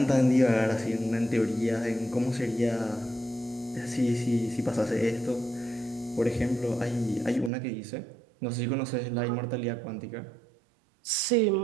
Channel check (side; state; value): left; drops out; at 7.5 s